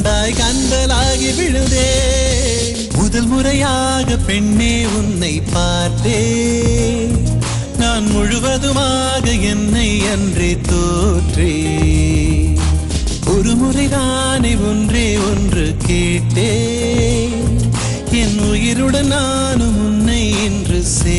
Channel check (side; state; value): both; identical; correlation 1.00